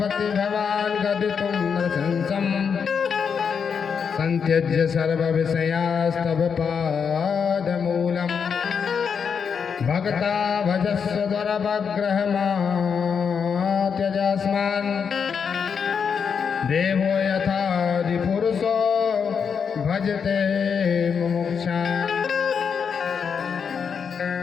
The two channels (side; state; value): right; quieter; 6.6 dB